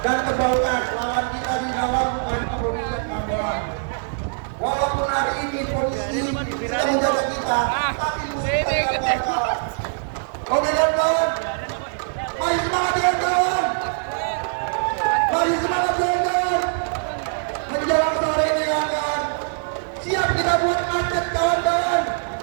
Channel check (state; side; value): silent; left; 57 dB below the other